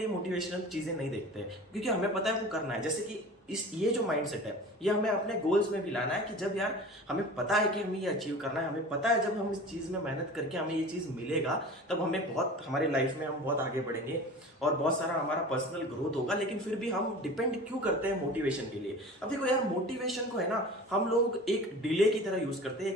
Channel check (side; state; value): both; normal; correlation 0.38